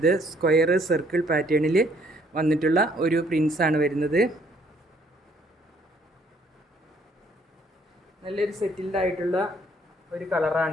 സ്ക്വയർ, സർക്കിൾ പാറ്റേണിൽ വന്നിട്ടുള്ള ഒരു പ്രിൻറ്റ്സാണ് വരുന്നത്. നല്ലൊരു സെറ്റിൽഡ് ആയിട്ടുള്ള ഒരു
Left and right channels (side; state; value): both; normal; correlation 0.64